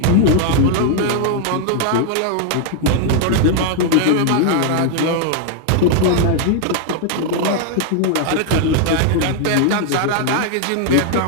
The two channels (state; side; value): different; both; correlation 0.00